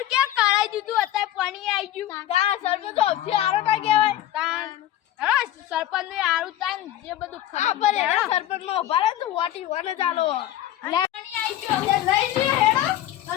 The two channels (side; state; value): right; quieter; 12.9 dB